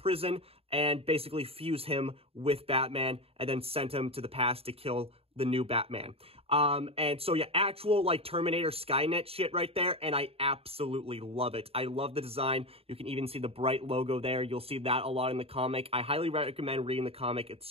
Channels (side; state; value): left; late; 0.28 ms